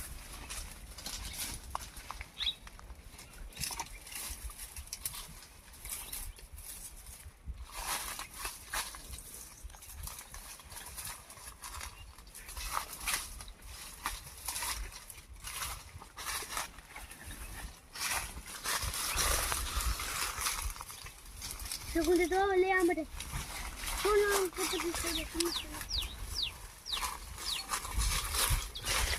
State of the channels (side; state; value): both; identical; correlation 1.00